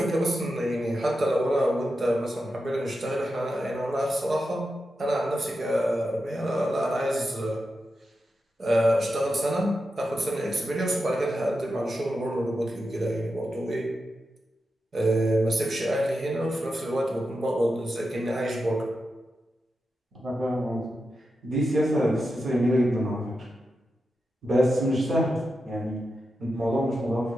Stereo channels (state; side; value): normal; both; correlation 0.89